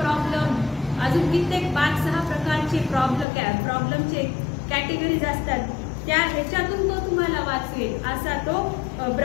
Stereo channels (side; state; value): right; drops out; at 3.2 s